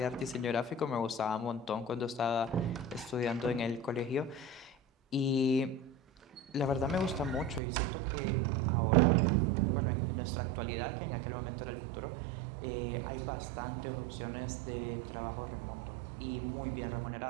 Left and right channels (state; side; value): drops out; left; at 7.6 s